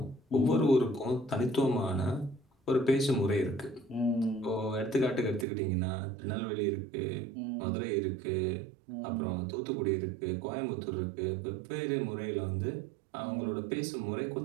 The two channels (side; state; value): left; drops out; at 5.5 s